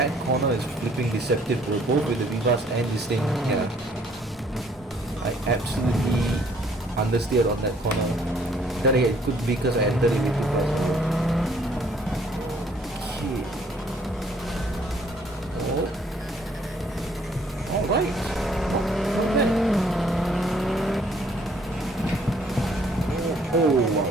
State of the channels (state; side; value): normal; both; correlation 0.62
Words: corner is flipping deceptive, bro, both with the Vivace and this thing. Yeah, I absolutely understeered on that corner. Then again, it could be because I entered it with too fast. Okay. Oh. Alright. Okay. Oh wow,